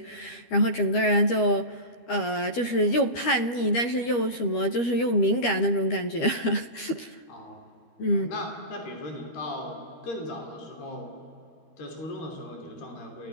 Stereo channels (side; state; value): right; late; 13 ms